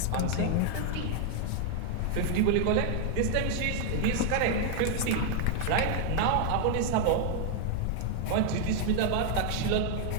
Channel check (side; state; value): both; different; correlation 0.00